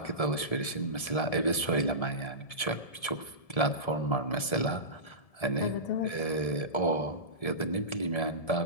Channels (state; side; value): late; right; 1.7 ms